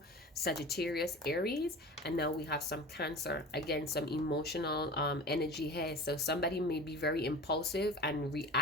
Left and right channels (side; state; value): both; normal; correlation 0.35